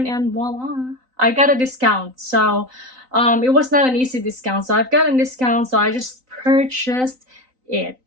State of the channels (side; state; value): left; late; 3.9 ms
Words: and voila, I got a discount. So it was not an easy discount. So I've got a discount. So I just purchased it.